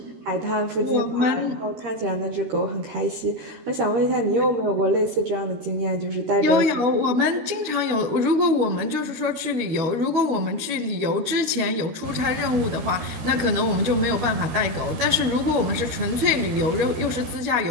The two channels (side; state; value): left; late; 12 ms